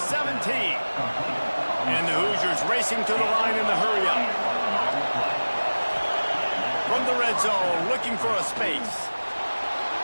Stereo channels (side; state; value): both; inverted; correlation -1.00